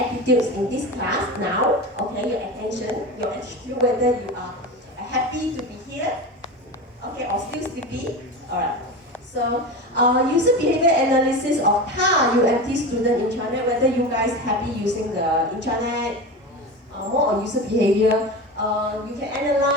in this class now, okay, your attention, your attitude, whether you are happy to be here, okay, or still sleepy, alright. So, user behavior analysis of UMT student intranet, whether you guys happy using the intranet, more on user behavior. You can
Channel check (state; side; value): normal; both; correlation 0.27